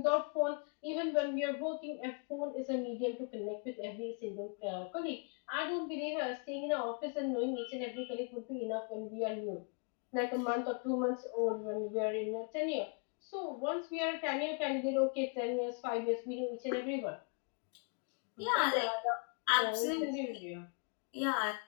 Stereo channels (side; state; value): right; quieter; 38.3 dB